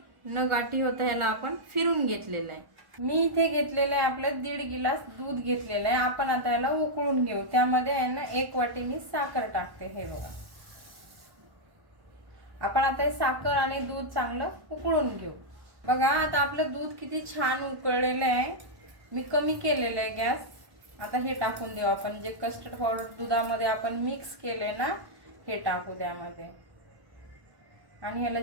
न गाठी होता ह्याला आपण फिरून घेतलेलं आहे। मी इथे घेतलेलं आहे आपलं 1.5 गिलास दूध घेतलेलं आहे। आपण आता याला उकळून घेऊ। त्यामध्ये आहे ना 1 वाटी मी साखर टाकते। हे बघा, आपण आता हे साखर आणि दूध चांगलं उकळून घेऊ। बघा आता आपलं दूध किती छान उकळलेलं आहे। मी कमी केलेलं आहे गॅस। आता हे टाकून देऊ आपण, जे कस्टर्ड पावडर दुधामध्ये आपण मिक्स केले ना, हे टाकू त्यामध्ये आणि ह्याला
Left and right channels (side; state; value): left; late; 1.1 ms